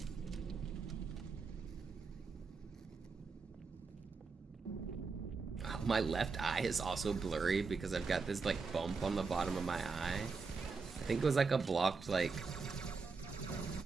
My left eye is also blurry because I've got this like bump on the bottom of my eye. I think it was like a blocked like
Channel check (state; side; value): quieter; left; 4.7 dB